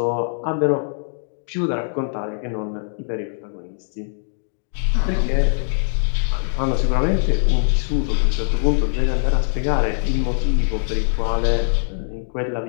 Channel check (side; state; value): right; silent; digital silence